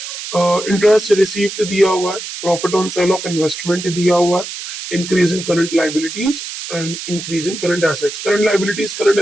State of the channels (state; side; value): noise; right; hiss, 9 dB below the sound